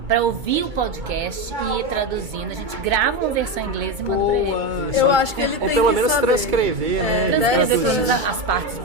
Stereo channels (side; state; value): left; late; 2.3 ms